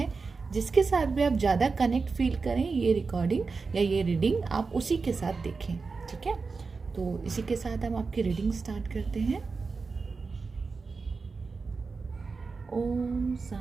जिसके साथ भी आप ज़्यादा कनेक्ट फील करें, ये रिकॉर्डिंग या ये रीडिंग आप उसी के साथ देखें, ठीक है। तो इसी के साथ हम आपकी रीडिंग स्टार्ट करते हैं। ओम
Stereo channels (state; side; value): quieter; left; 4.5 dB